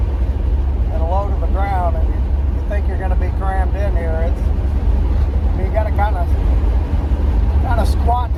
low to the ground, and you think you're going to be crammed in here. I mean, you got to kind of squat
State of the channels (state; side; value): identical; both; correlation 1.00